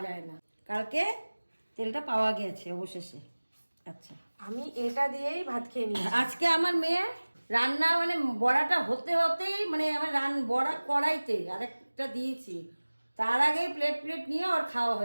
যায় না, কালকে তেলটা পাওয়া গেছে অবশেষে। আচ্ছা, আমি এটা দিয়েই ভাত খেয়ে নিই। আজকে আমার মেয়ে রান্না মানে বড়াটা হতে হতেই মানে আমার বড়া কড়াইতে আরেকটা দিয়েছি, তার আগেই প্লেট প্লেট নিয়ে ওর খাওয়া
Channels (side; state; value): both; inverted; correlation -1.00